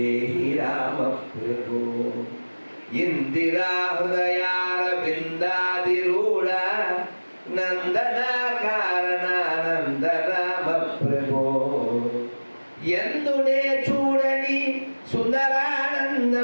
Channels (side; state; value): both; inverted; correlation -1.00